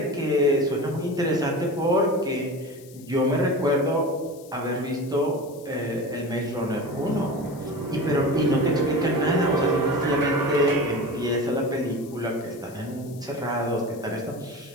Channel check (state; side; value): noise; left; hiss, 23 dB below the sound